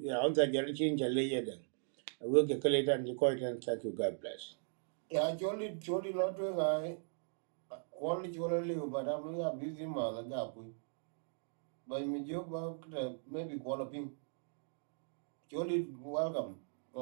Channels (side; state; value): left; silent; digital silence